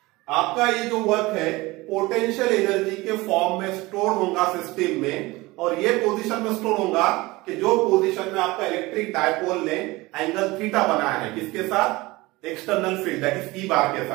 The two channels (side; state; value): left; quieter; 21.3 dB